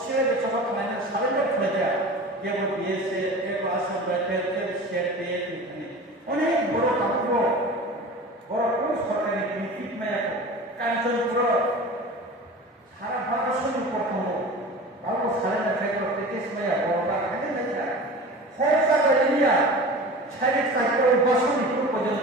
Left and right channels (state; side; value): normal; both; correlation 0.36